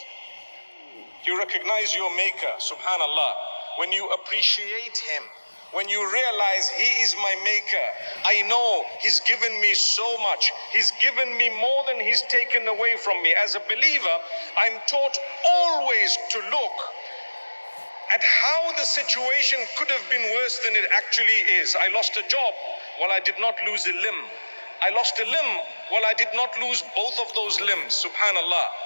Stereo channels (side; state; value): both; inverted; correlation -1.00